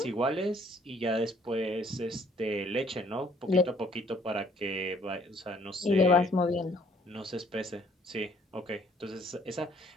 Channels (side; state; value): both; normal; correlation 0.62